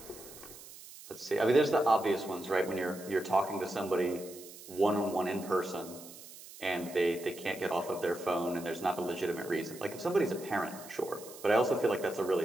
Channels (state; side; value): noise; right; hiss, 17 dB below the sound